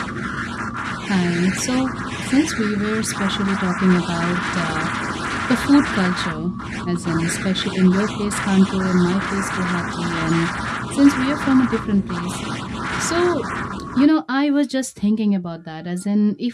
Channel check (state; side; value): identical; both; correlation 1.00